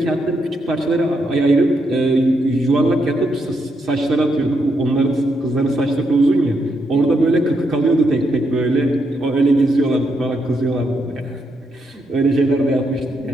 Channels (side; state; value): both; normal; correlation 0.79